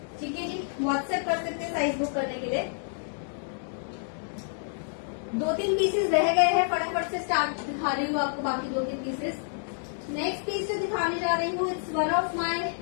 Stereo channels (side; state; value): right; silent; digital silence